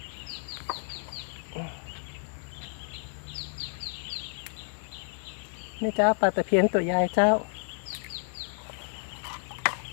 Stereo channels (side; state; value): right; silent; digital silence